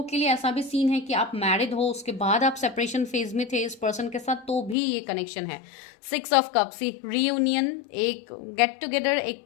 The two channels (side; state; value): right; drops out; at 4.8 s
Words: के लिए ऐसा भी सीन है कि आप मैरिड हो, उसके बाद आप सेपरेशन फेज में थे इस पर्सन के साथ, तो भी ये कनेक्शन है। 6 ऑफ कप्स, रीयूनियन, एक गेट टुगेदर,